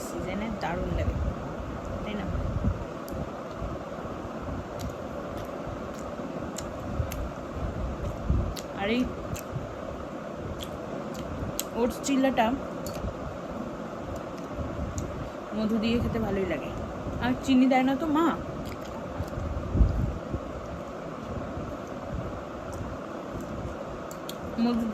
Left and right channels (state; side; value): identical; both; correlation 1.00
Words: সিজনে দারুণ লাগে, তাই না? আর এই ওটস চিল্লাটা মধু দিয়ে খেতে ভালোই লাগে। আর চিনি দেয় না তো মা, মধু